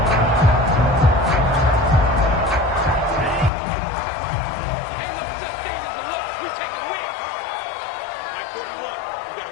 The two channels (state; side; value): drops out; right; at 3.5 s